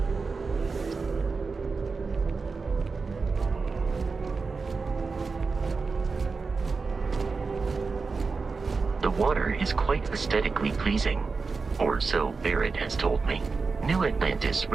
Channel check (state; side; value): quieter; left; 4.5 dB